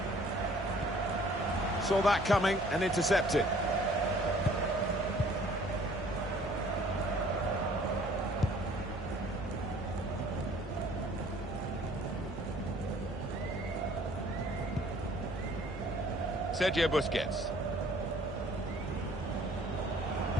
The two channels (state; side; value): normal; both; correlation 0.55